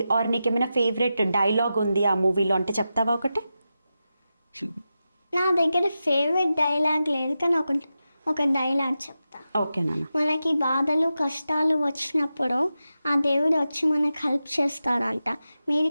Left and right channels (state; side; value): inverted; both; correlation -0.91